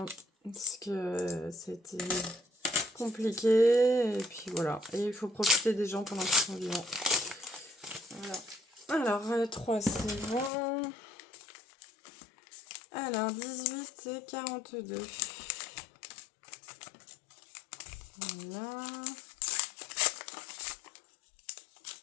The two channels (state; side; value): drops out; right; at 10.5 s